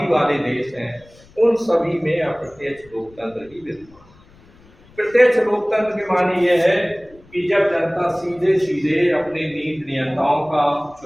वाले देश हैं, उन सभी में अप्रत्यक्ष लोकतंत्र ही विद्यमान है। प्रत्यक्ष लोकतंत्र के माने यह है कि जब जनता सीधे सीधे अपने नीति नियंताओं का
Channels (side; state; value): left; noise; rumble, 27 dB below the sound